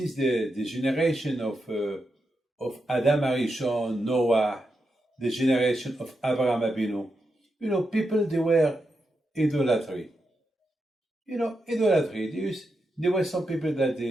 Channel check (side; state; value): both; normal; correlation 0.86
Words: generation of Adam Arishon, Noah, the generation of Abraham Abinu, people, they were idolatry. Idolatry. There were some people that